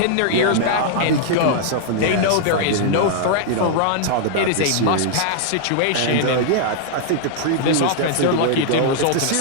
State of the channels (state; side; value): different; both; correlation -0.01